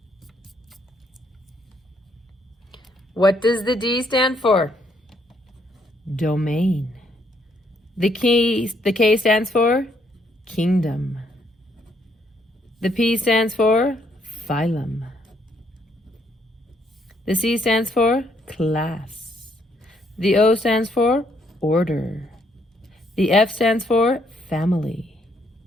What does the D stand for? Domain. The K stands for kingdom. The P stands for phylum. The C stands for class. The O stands for order. The F stands for family.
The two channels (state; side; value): normal; both; correlation 0.71